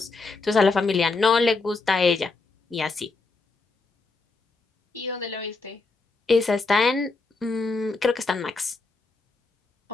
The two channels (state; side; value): quieter; right; 3.8 dB